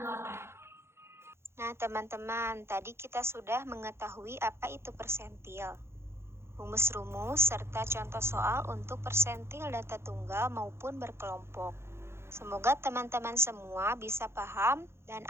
Nah, teman-teman, tadi kita sudah mengetahui apa itu persentil, rumus-rumus, serta contoh soal untuk persentil data tunggal maupun berkelompok. Semoga teman-teman semua bisa paham dan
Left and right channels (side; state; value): left; late; 0.12 ms